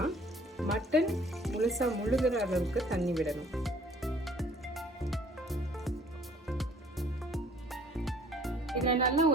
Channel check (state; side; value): normal; both; correlation 0.53